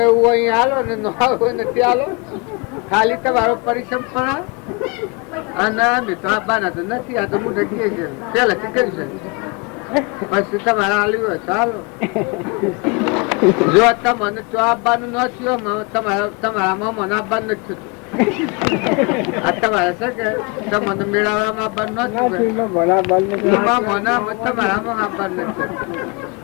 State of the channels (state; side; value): quieter; right; 29.2 dB